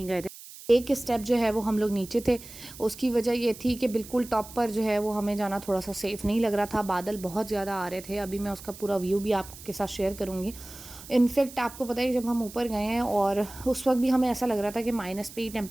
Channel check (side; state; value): right; noise; hiss, 16 dB below the sound